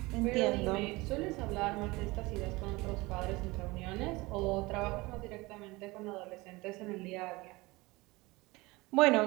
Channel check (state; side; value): quieter; left; 22.4 dB